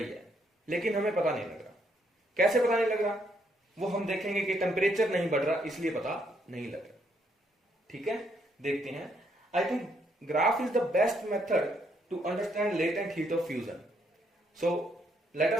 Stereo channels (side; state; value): both; normal; correlation 0.73